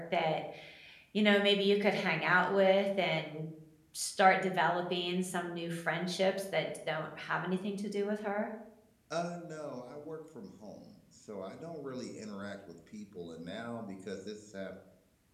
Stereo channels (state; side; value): identical; both; correlation 1.00